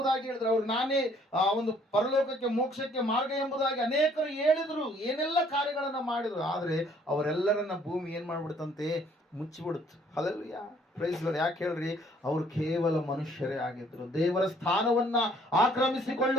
ಹೇಳಿದ್ರು, ಅವ್ರು ನಾನೇ ಒಂದು ಪರಲೋಕಕ್ಕೆ ಮೋಕ್ಷಕ್ಕೆ ಮಾರ್ಗ ಎಂಬುದಾಗಿ ಅನೇಕರು ಹೇಳಿದ್ರು, ಏನೆಲ್ಲ ಕಾರ್ಯಗಳನ್ನ ಮಾಡಿದ್ರು. ಆದ್ರೆ ಅವರೆಲ್ಲರನ್ನ ಭೂಮಿ ಏನ್ ಮಾಡ್ಬಿಡ್ತಂತೆ? ಮುಚ್ಚಿಬಿಡುತ್ತೆ. ಹಲ್ಲೆಲೂಯಾ. Praise Lord. ಯಾಕೆ ಹೇಳ್ರಿ? ಅವರು ಕೇವಲ ಮನುಷ್ಯರೇ ಆಗಿದ್ರು, ದೇವರ ಸ್ಥಾನವನ್ನ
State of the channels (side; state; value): both; normal; correlation 0.61